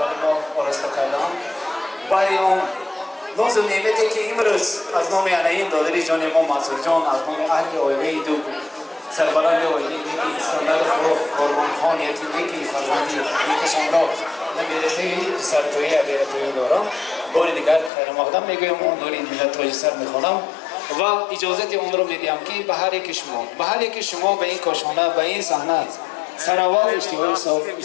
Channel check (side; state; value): right; drops out; at 17.9 s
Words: ما آراسته کردند، برای آن ناز و نعمتی که امروز از نام انعین دادر جان ما منصور جان، از نام اهل آیله دو سربلند اویلی نیکی اسکندر قربان خان یکی نیکی فرزندی نیکشان را نمیرته سرتویی بیرتویی دارم. بار دیگر خیر مقدم میگویم اون نوری ملت تاج سر میخوانم و اجازت اون رو میدیم که به هر یک شما به این کاشانه به این صحنه سراوات